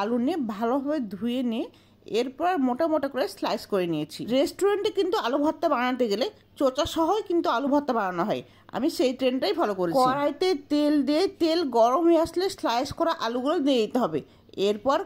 আলু নিয়ে ভালোভাবে ধুয়ে নিয়ে এরপর মোটা মোটা করে স্লাইস করে নিয়েছি। রেস্টুরেন্টে কিন্তু আলু ভর্তা বানাতে গেলে চোচা সহই কিন্তু আলু ভর্তা বানানো হয়, আমি সেই ট্রেন্ডটাই ফলো করেছি। কড়াইতে তেল দিয়ে তেল গরম হয়ে আসলে স্লাইস করা আলুগুলো দিয়ে দিতে হবে। এরপর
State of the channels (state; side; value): identical; both; correlation 1.00